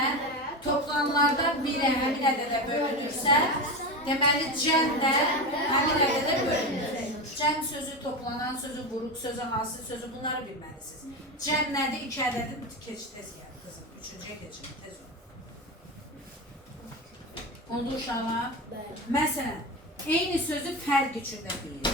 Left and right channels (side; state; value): both; normal; correlation 0.20